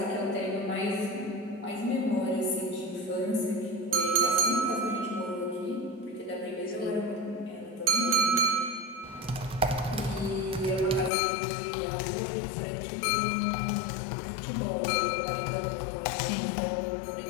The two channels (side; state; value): right; drops out; at 11.1 s